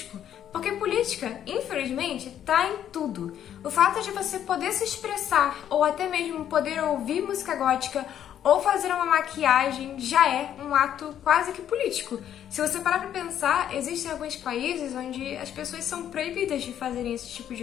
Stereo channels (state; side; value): quieter; right; 10.2 dB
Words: Porque política, infelizmente, tá em tudo. O fato de você poder se expressar, ou até mesmo poder ouvir música gótica, ou fazer uma maquiagem, já é um ato quase que político. Se você parar pra pensar, existem alguns países onde as pessoas são proibidas de fazerem esse tipo